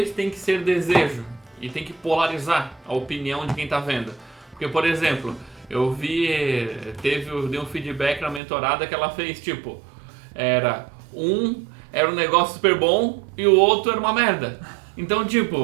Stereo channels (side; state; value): left; drops out; at 8.4 s